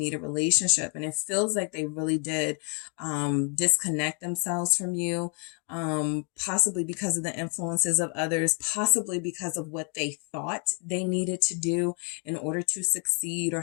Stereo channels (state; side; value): quieter; right; 39.4 dB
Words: a relationship. And it feels like they really did, disconnect themselves from you. Possibly because of the influences of others, possibly because of what they thought they needed to do in order to succeed or